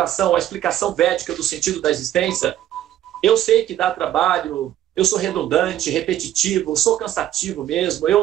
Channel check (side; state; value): left; quieter; 12.4 dB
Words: a explicação védica do sentido da existência, eu sei que dá trabalho, eu sou redundante, repetitivo, sou cansativo mesmo,